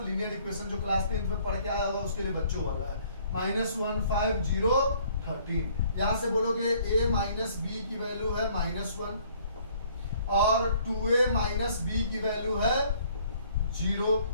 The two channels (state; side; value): inverted; both; correlation -0.60